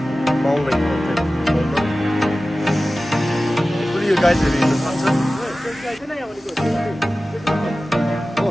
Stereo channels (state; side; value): normal; both; correlation 0.96